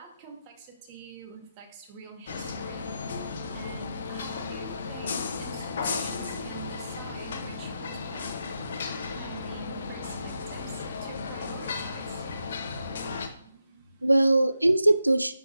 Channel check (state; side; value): inverted; both; correlation -0.86